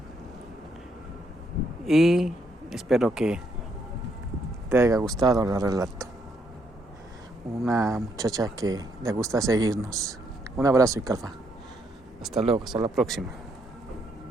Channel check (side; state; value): both; normal; correlation 0.74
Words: y espero que te haya gustado el relato. Una muchacha que le gusta seguirnos. Un abrazo, Icalfa. Hasta luego, hasta la próxima.